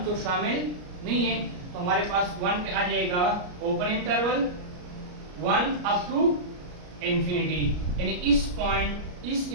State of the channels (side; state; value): left; late; 33 ms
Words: तो शामिल नहीं है, तो हमारे पास 1 पे आ जाएगा open interval 1 up to infinity, यानी इस पॉइंट, इस